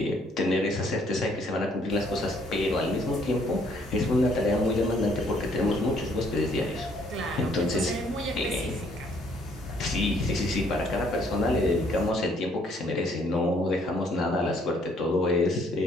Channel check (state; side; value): normal; both; correlation 0.65